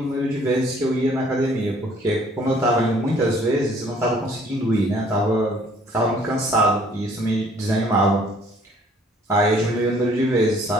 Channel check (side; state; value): both; normal; correlation 0.59